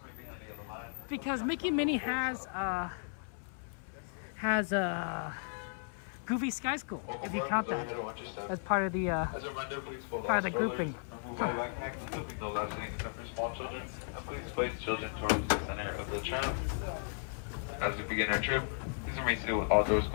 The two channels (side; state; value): right; silent; 54 dB below the other